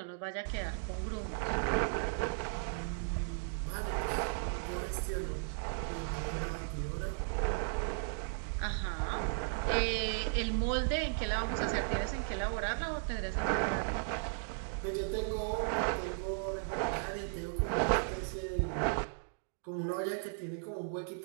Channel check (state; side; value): silent; left; digital silence